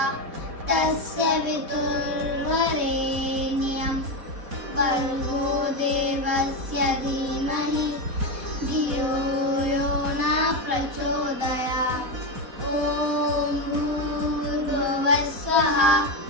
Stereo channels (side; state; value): left; late; 4.1 ms